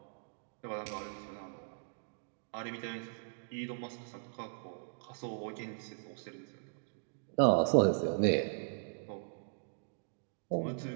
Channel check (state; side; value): silent; left; digital silence